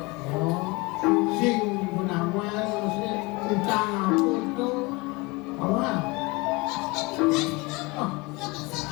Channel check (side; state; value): right; quieter; 25.4 dB